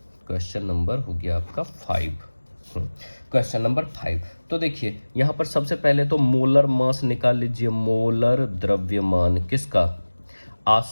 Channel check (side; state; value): both; inverted; correlation -1.00